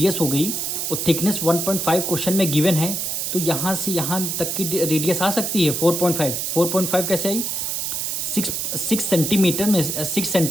हो गई और थिकनेस 1.5 क्वेश्चन में गिवन है, तो यहाँ से यहाँ तक की रेडियस आ सकती है 4.5। 4.5 कैसे आई, 6 सेंटीमीटर में 6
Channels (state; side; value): noise; right; hiss, 2 dB below the sound